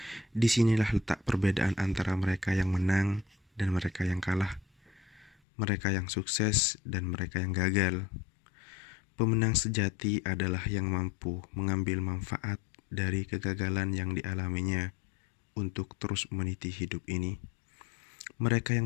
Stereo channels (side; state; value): right; drops out; at 5.4 s